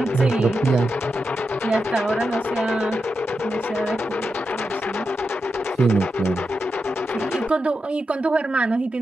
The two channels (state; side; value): normal; both; correlation 0.88